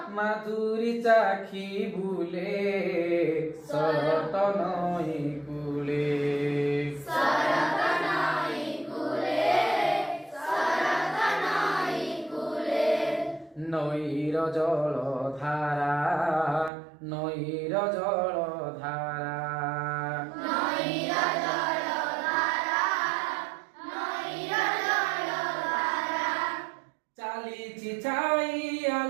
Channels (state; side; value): drops out; left; at 16.7 s